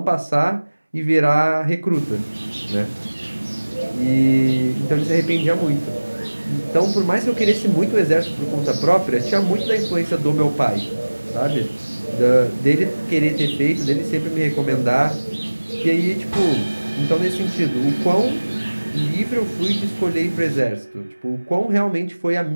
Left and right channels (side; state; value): both; inverted; correlation -1.00